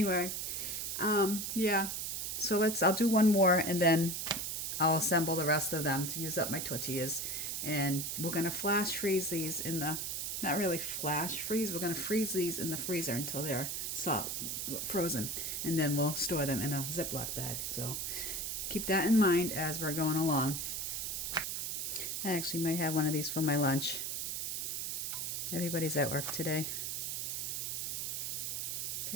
yeah. So I'll do one more and then I'll assemble the rest of them to use up my tortillas. And we're gonna flash freeze these in the, not really flash freeze, we're gonna freeze these in the freezer until they're soft, frozen. And then we'll store them in a Ziploc bag. So keep that in mind as we're going along. I actually might have one of these for my lunch. Everybody's at work today.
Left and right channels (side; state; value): right; noise; hiss, 2 dB below the sound